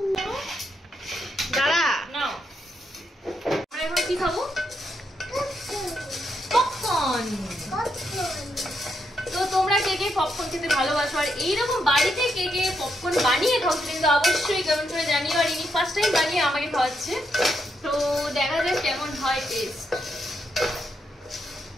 দাঁড়া নাও, আমরা এখন কি খাবো? পপকর্ন। তো তোমরা কে কে পপকর্ন খেতে ভালোবাসো আর এইরকম বাড়িতে কে কে পপকর্ন বানিয়ে খাও কিন্তু অবশ্যই কমেন্ট করে জানিও। আর ইনি ফার্স্ট টাইম বানিয়ে আমাকে খাওয়াচ্ছে, তো দেখা যাক কেমন হয় টেস্ট।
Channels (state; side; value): normal; both; correlation 0.80